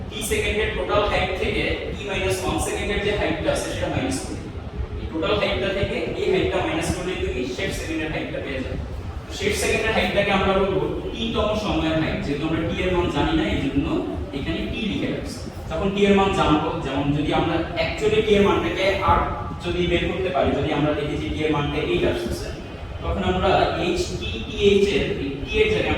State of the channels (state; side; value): identical; both; correlation 1.00